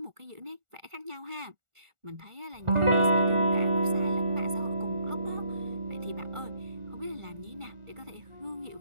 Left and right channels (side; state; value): left; late; 1.4 ms